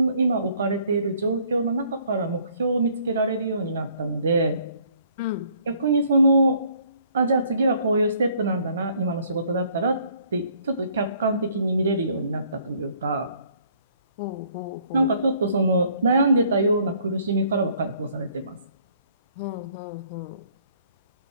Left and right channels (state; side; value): inverted; both; correlation -0.62